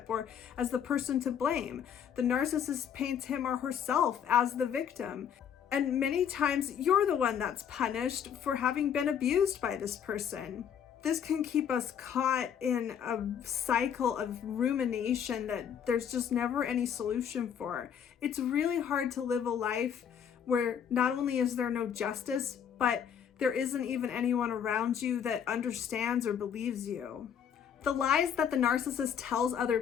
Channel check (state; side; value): quieter; right; 8.3 dB